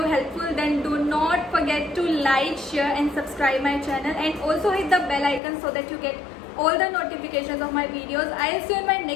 helpful, then do not forget to like, share and subscribe my channel, and also hit the bell icon so that you get all the notifications of my videos. I'll see you in my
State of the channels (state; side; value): drops out; right; at 5.4 s